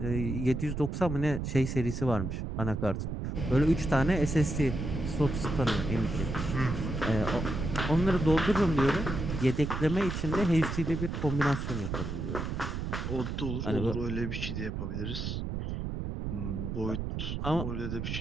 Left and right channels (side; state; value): right; noise; rumble, 3 dB below the sound